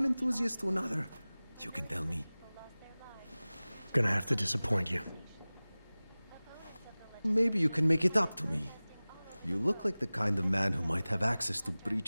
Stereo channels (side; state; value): both; inverted; correlation -0.99